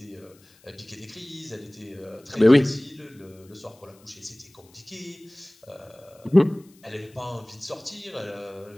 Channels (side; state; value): left; noise; hiss, 29 dB below the sound